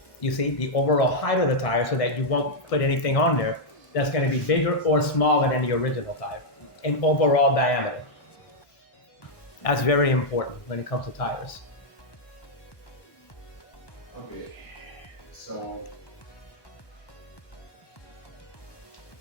You see, the overall height of the tire, so that you won't put anything on there that's going to be bigger or smaller than the original tire in overall diameter. That's very important when it comes to tires. Okay, so.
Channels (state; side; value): late; right; 1.1 ms